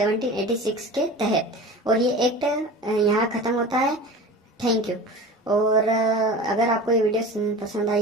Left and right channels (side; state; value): both; normal; correlation 0.35